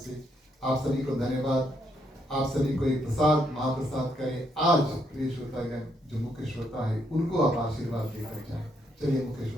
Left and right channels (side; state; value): both; normal; correlation 0.75